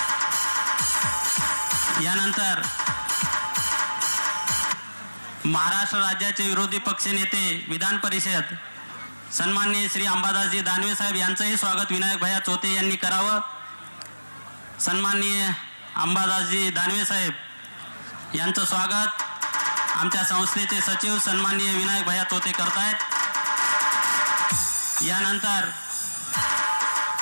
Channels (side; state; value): both; inverted; correlation -1.00